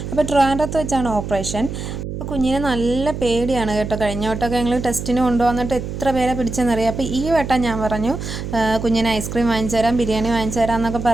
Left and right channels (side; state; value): right; noise; hum, 6 dB below the sound